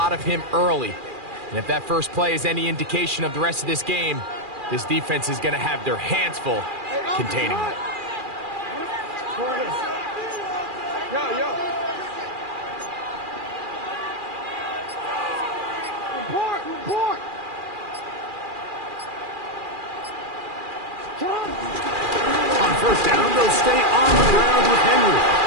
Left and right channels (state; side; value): late; left; 2.4 ms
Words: of him early. And if that first play is any indication of the rest of this game, this defense is going to have their hands full containing him. On first down, they'll stay on the ground with Henry.